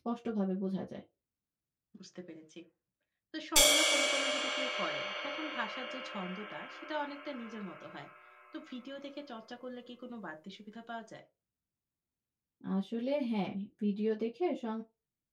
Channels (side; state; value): both; identical; correlation 1.00